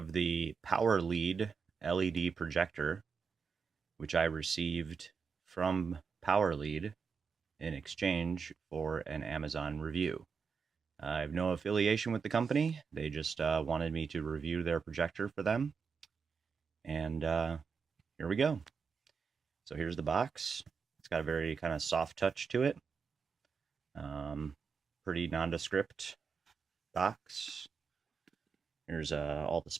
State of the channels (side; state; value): left; quieter; 5.7 dB